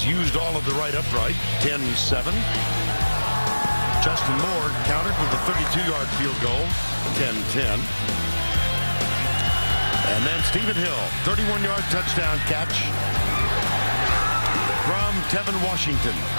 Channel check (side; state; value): both; inverted; correlation -1.00